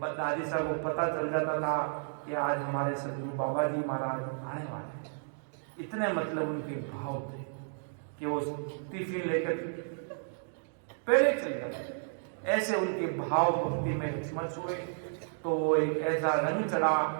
दादी साहब को पता चल जाता था कि आज हमारे सदगुरु बाबा जी महाराज आने वाले हैं। इतने मतलब उनके भाव थे कि वो टिफिन लेकर पहले चल गए, ऐसे उनके भाव भक्ति में स्मर्श हुए। तो वो एक ऐसा रंग चढ़ा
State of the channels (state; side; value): silent; left; digital silence